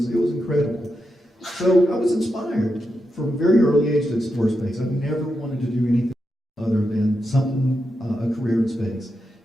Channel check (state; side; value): normal; both; correlation 0.86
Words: incredible. So I was inspired from a very early age to explore space. I've never wanted to do anything other than a career in space.